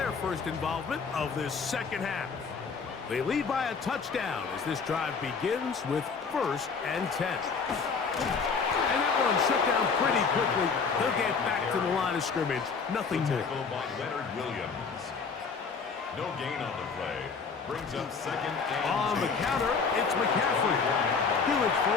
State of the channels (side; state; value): right; quieter; 5.3 dB